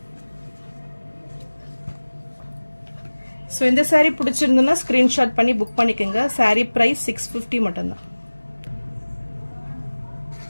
ஸோ இந்த சாரீ பிடிச்சிருந்ததுன்னா ஸ்க்ரீன்ஷாட் பண்ணி புக் பண்ணிக்கோங்க. சாரீ ப்ரைஸ் 650 மட்டும்தான்.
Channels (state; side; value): inverted; both; correlation -1.00